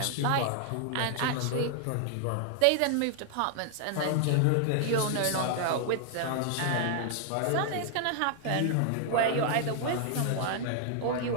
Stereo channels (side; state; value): both; different; correlation 0.00